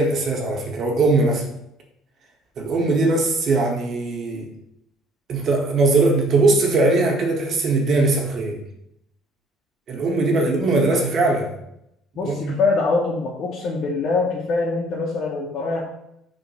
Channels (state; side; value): normal; both; correlation 0.58